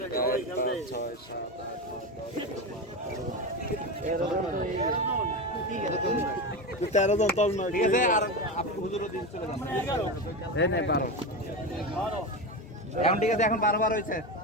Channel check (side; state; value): both; normal; correlation 0.19